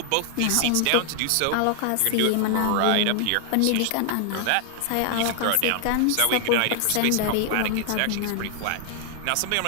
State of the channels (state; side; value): different; both; correlation 0.00